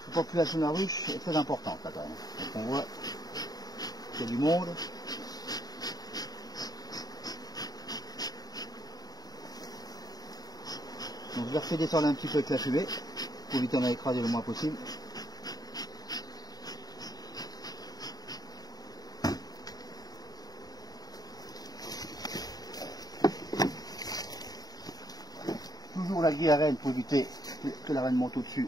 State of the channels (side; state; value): right; late; 0.19 ms